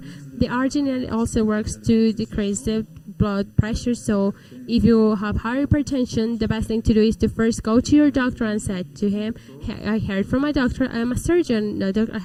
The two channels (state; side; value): identical; both; correlation 1.00